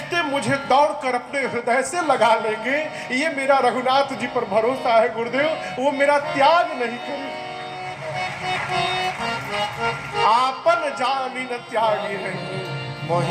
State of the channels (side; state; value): both; identical; correlation 1.00